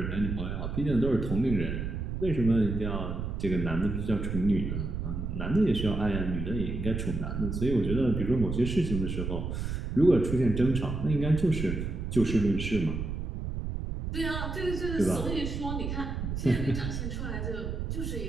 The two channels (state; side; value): noise; right; rumble, 4 dB below the sound